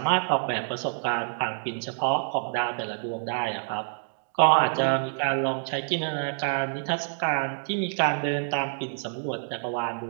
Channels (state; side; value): silent; left; digital silence